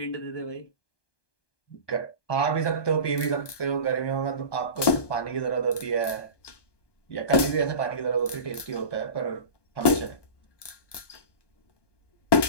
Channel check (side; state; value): right; late; 1.2 ms